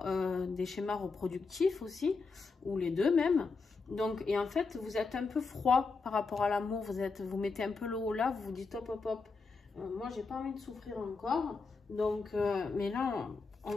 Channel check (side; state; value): right; quieter; 4.4 dB